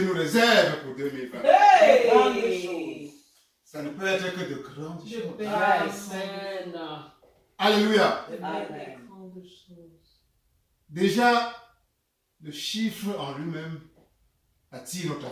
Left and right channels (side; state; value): both; identical; correlation 1.00